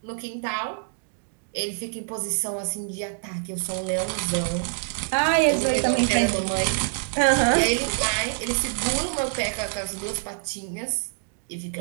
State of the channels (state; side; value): silent; left; digital silence